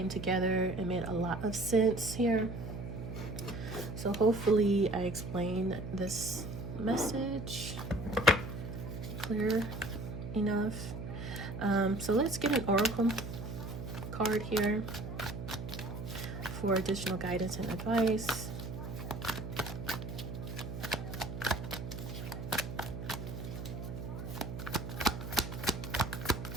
together and made a lot of sense here. So hopefully I explained this message clear enough. So let's get an oracle card here for additional guidance and advice.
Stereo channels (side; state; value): right; noise; hum, 7 dB below the sound